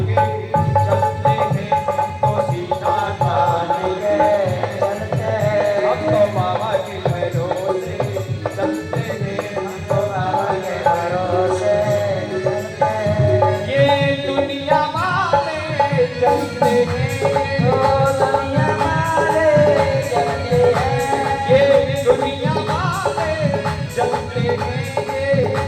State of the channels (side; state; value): both; identical; correlation 1.00